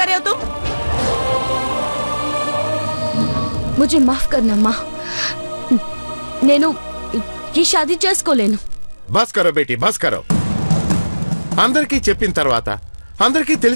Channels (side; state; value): both; inverted; correlation -1.00